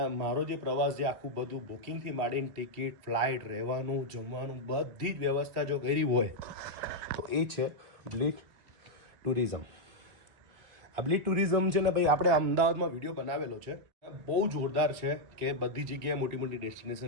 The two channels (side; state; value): left; late; 2.2 ms